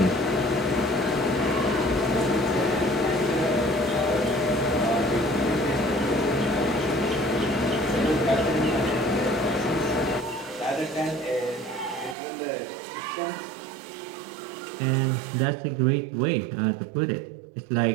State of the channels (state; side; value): drops out; left; at 12.2 s